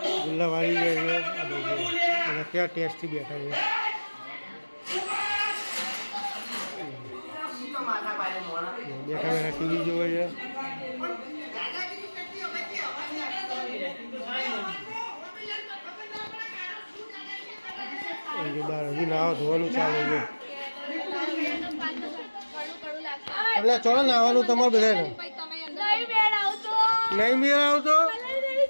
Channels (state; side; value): inverted; both; correlation -1.00